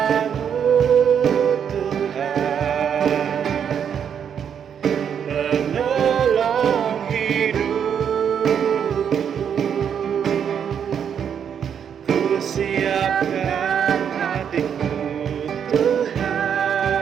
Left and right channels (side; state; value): left; quieter; 8.0 dB